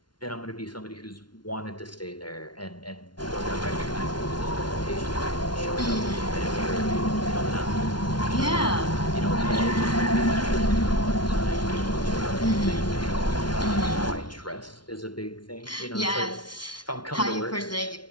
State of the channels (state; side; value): late; right; 0.71 ms